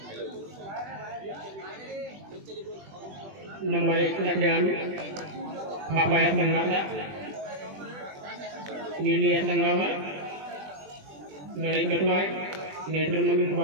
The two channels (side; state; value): left; late; 20 ms